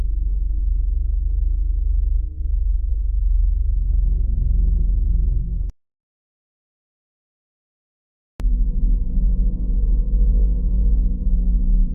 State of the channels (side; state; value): both; identical; correlation 1.00